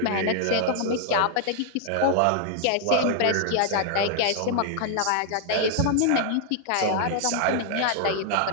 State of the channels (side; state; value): both; different; correlation 0.00